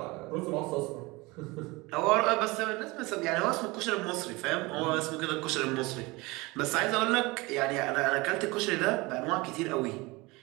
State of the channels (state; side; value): quieter; left; 23.7 dB